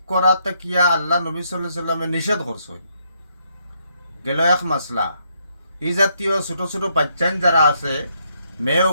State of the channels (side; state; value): both; inverted; correlation -0.74